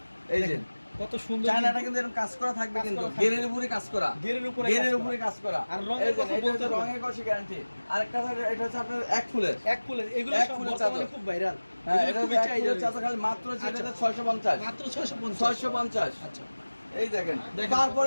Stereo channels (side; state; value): both; inverted; correlation -1.00